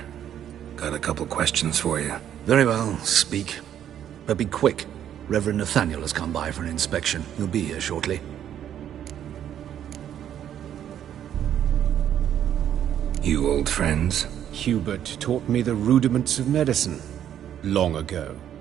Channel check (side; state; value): left; quieter; 10.2 dB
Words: Got a couple questions for you. Very well, speak. But be quick. Reverend Nathaniel has come by for an inspection. He'll be here shortly. You old friends? Hubert taught me the rudiments of medicine. Long ago.